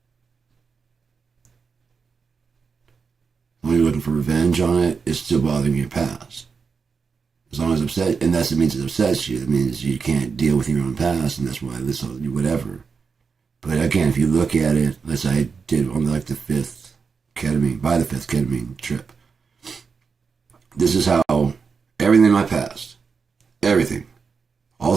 When you're looking for revenge on it, it's still bothering your past. As long as it's upset, and that's what means it upsets you. It means you can't deal with your own past, and that's why this whatever. But again, if you look at it, as I did on like the fifth ketamine trip, this is how everything in my past, everything, all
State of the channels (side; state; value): left; quieter; 5.4 dB